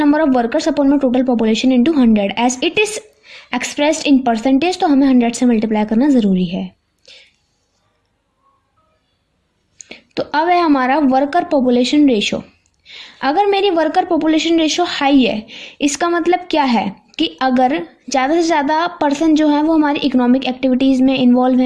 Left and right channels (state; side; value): identical; both; correlation 1.00